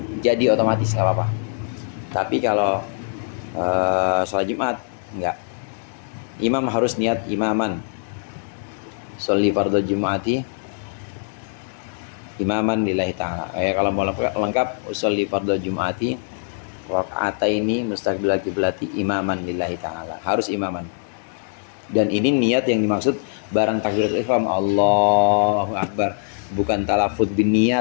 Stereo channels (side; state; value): right; silent; digital silence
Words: jadi otomatis nggak apa-apa. Tapi kalau sholat Jumat enggak, imam harus niat imaman. Sholli fardhu Jum'ati imaman lillahi ta'ala. Kalau mau lengkap sholli fardhu Jum'ati raka'ataini mustaqbilal qiblati imaman lillahi ta'ala. Harus imaman. Dan ini niat yang dimaksud barang takbiratul ihram Allahu akbar, bukan talafuz bin